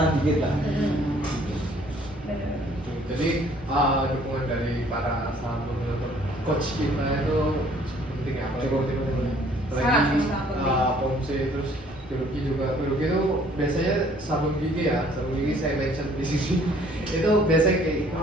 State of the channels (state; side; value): normal; both; correlation 0.59